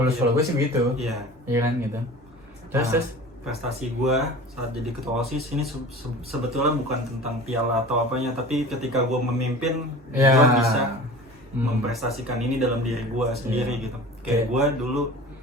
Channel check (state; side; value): normal; both; correlation 0.39